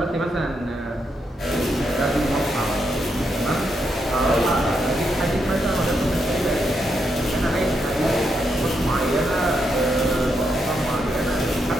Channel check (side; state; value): both; normal; correlation 0.81